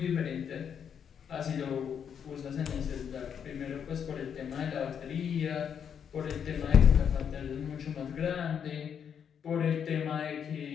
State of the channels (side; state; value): right; quieter; 7.8 dB